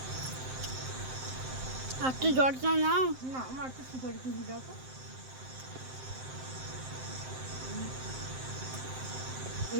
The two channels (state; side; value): late; left; 7.7 ms